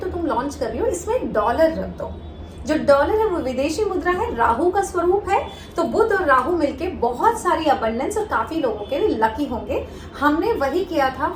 तो तुम लॉन्च कर रही हो, इसमें डॉलर रख दो। जो डॉलर है वो विदेशी मुद्रा है, राहु का स्वरूप है, तो बुध और राहु मिलके बहुत सारी अबंडेंस और काफी लोगों के लिए लकी होंगे। हमने वही किया था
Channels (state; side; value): identical; both; correlation 1.00